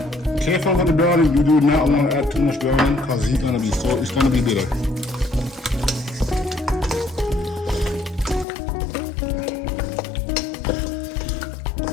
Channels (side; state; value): right; drops out; at 8.5 s